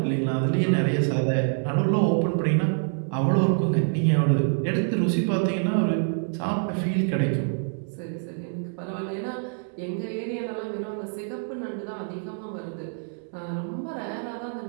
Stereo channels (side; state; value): left; silent; 61 dB below the other